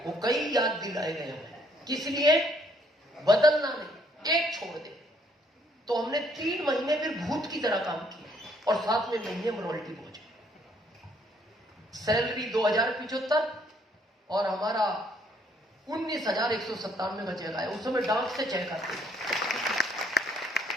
वो कई याद दिलाए गए हमें। किस लिए? बदलना नहीं, एक छोड़ दे। तो हमने 3 महीने फिर भूत की तरह काम किया, और 7वें महीने में रॉयल्टी पहुंचे। सैलरी 2075 और हमारा 19,197 का चेक आया। उस समय डाक से चेक आते,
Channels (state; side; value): normal; both; correlation 0.66